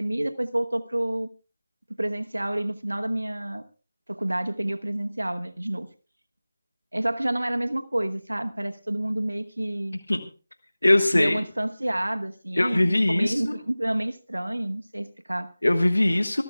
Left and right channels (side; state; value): both; inverted; correlation -0.99